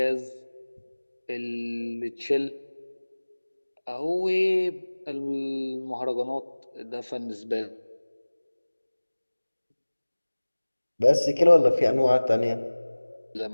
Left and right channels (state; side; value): inverted; both; correlation -1.00